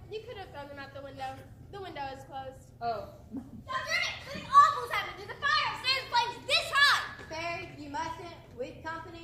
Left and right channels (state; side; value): identical; both; correlation 1.00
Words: you could have thrown them out the window. The window is closed. Oh. Dr. Emmett, something awful's happened. There's a fire upstairs. The flame's this high. Barry, you mustn't. With